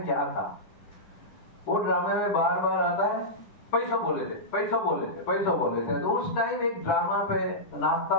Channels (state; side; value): late; right; 11 ms